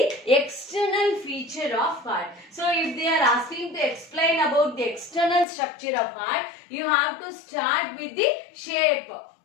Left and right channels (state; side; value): drops out; right; at 5.5 s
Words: external feature of heart. So if they are asking to explain about the external structure of heart, you have to start with the shape.